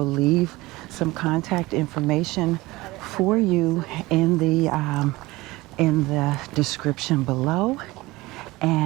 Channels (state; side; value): quieter; left; 20.4 dB